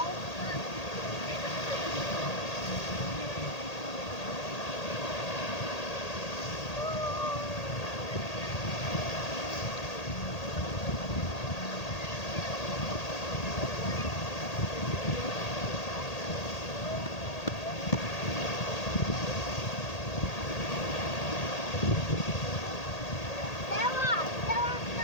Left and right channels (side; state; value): right; late; 1.8 ms